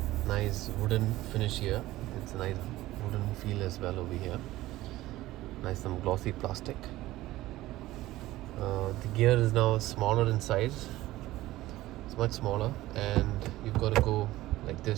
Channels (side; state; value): left; quieter; 16.7 dB